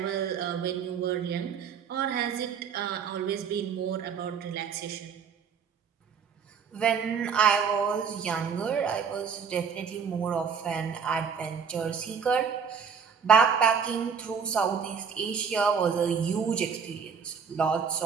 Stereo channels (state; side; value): quieter; left; 6.5 dB